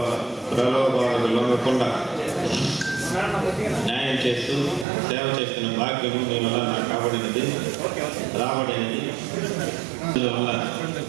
ప్రలోభాలకు లొంగకుండా న్యాయం చేస్తూ సేవ చేస్తున్న భాగ్యము మీ వల్ల నాకు రాబడినది. అందువల్ల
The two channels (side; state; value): left; drops out; at 4.9 s